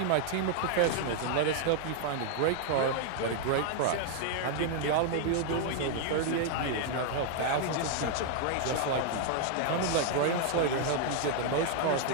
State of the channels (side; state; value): both; different; correlation 0.00